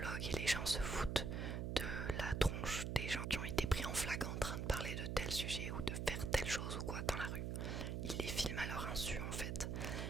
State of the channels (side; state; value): right; noise; hum, 2 dB below the sound